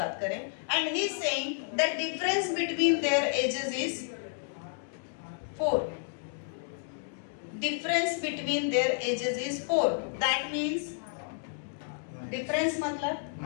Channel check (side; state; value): right; silent; digital silence